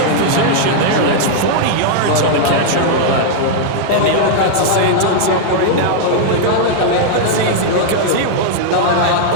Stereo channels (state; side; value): different; both; correlation -0.01